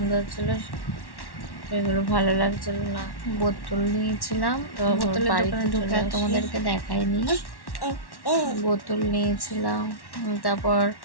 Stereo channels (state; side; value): late; right; 1.1 ms